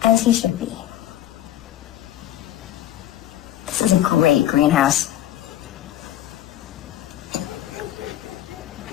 As he should be. This is a great greenhouse.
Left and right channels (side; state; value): right; quieter; 12.9 dB